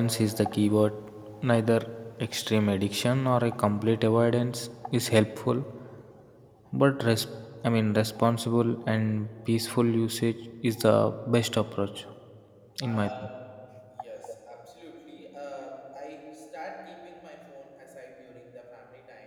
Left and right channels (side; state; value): both; identical; correlation 1.00